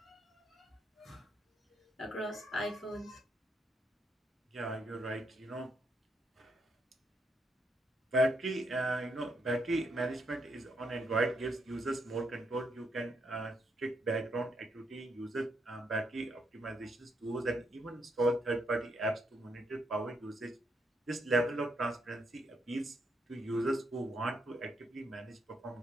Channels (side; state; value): both; normal; correlation 0.77